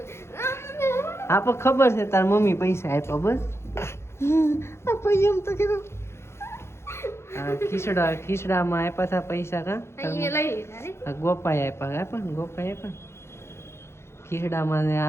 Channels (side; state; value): right; late; 0.13 ms